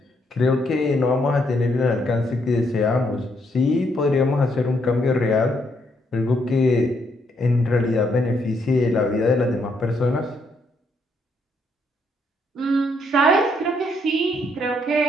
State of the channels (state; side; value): normal; both; correlation 0.74